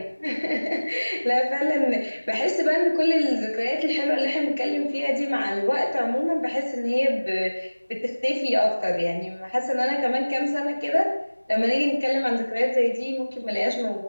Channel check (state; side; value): inverted; both; correlation -1.00